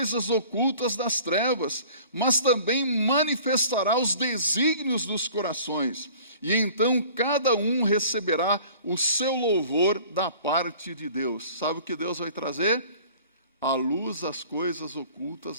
ocultas das trevas, mas também manifestará os desígnios dos corações. E então cada um receberá o seu louvor da parte de Deus. Sabe o que Deus vai trazer? À luz as coisas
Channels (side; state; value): both; inverted; correlation -0.48